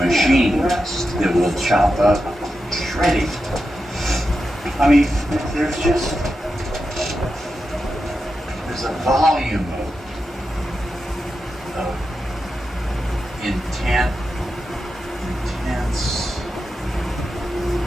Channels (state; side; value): normal; both; correlation 0.89